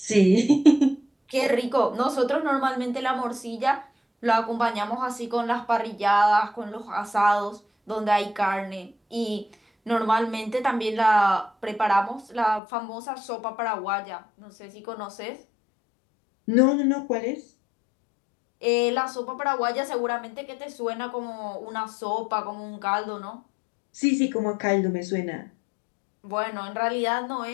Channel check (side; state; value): right; drops out; at 12.6 s